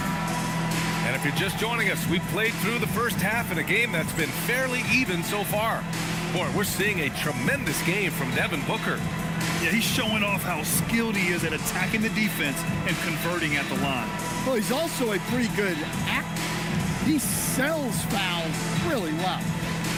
And if you're just joining us, we've played through the first half in a game that's been fairly even so far. Boy, we're seeing a tremendous game from Devin Booker. Yeah, he's showing off how skilled he is at attacking the defense and converting at the line. Well, he's also a pretty good actor. He sells fouls really well.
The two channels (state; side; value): identical; both; correlation 1.00